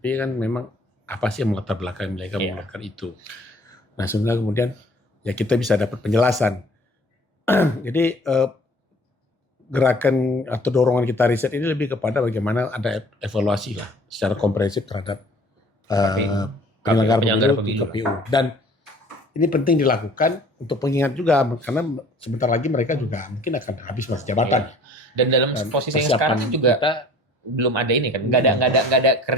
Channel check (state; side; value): normal; both; correlation 0.51